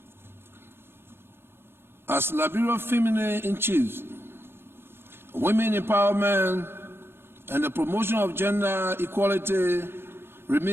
As Liberia Feminine in Chief, women empowerment and the promotion of gender equality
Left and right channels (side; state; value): left; late; 0.11 ms